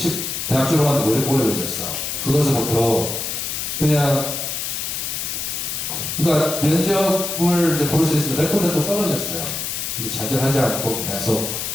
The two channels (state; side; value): noise; left; hiss, 3 dB below the sound